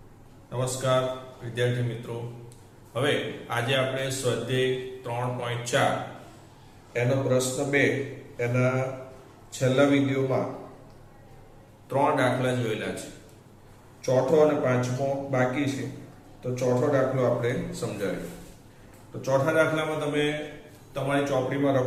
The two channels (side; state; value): both; identical; correlation 1.00